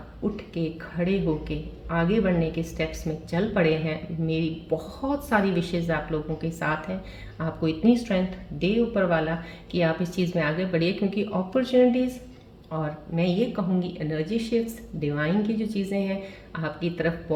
उठ के खड़े होके आगे बढ़ने के स्टेप्स में चल पड़े हैं, मेरी बहुत सारी विशेज़ आप लोगों के साथ हैं। आपको इतनी स्ट्रेंथ दे ऊपर वाला कि आप इस चीज़ में आगे बढ़िए, क्योंकि अपॉर्चुनिटीज़ और मैं ये कहूँगी एनर्जी शिफ्ट्स, डिवाइन की जो चीज़ें हैं आपकी तरफ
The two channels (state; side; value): identical; both; correlation 1.00